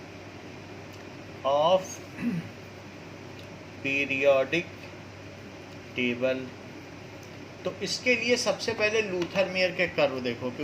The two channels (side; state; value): both; identical; correlation 1.00